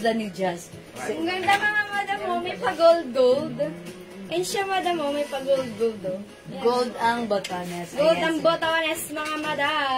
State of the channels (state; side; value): identical; both; correlation 1.00